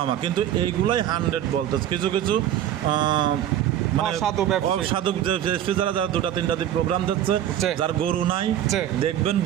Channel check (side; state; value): left; quieter; 11.3 dB